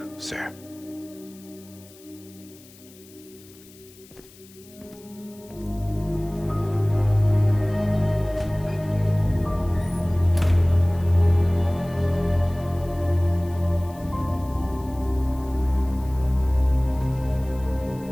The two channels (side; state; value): left; noise; hiss, 24 dB below the sound